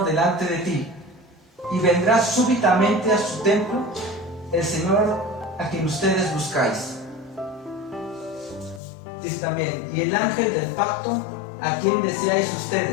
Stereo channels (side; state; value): right; drops out; at 8.8 s